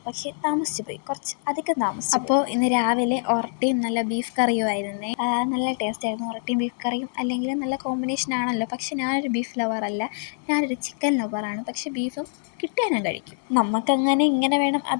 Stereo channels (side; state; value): right; silent; 61 dB below the other